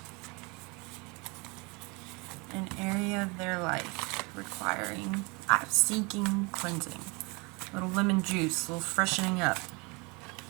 An area of their life requiring, seeking cleansing. A little lemon juice, a little freshening up.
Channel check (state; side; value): quieter; left; 28.6 dB